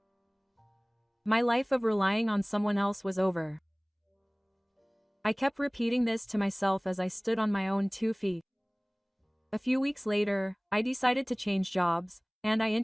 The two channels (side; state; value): both; identical; correlation 1.00